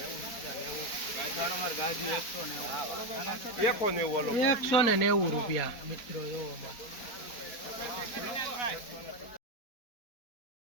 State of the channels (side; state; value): right; late; 4.2 ms